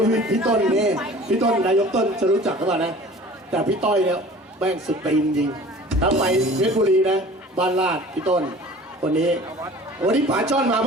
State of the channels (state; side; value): normal; both; correlation 0.44